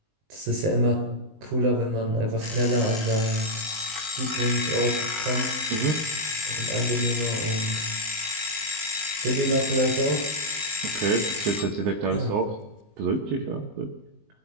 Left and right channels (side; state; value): left; late; 19 ms